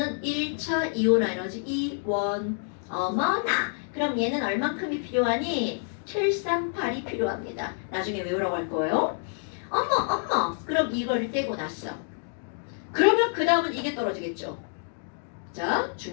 1차 이온화 에너지 이원 어머나 그럼 얘는 얼만큼이 필요하니? 738이 필요합니다. 나중에 외우라고 할 거예요. 어머 그럼 이걸 떼고 났어. 그러면 그 다음은 이게 떨어지겠죠. 자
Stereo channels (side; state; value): right; silent; 60 dB below the other